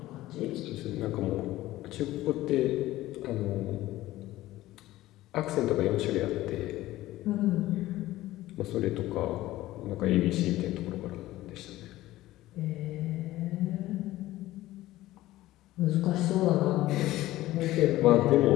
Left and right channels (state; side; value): quieter; right; 16.2 dB